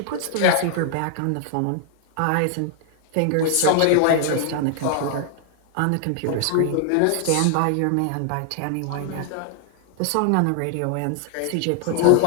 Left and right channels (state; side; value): different; both; correlation -0.01